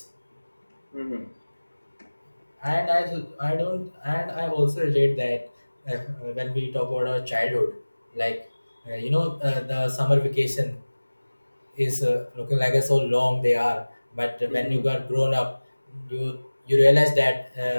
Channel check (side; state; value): both; inverted; correlation -1.00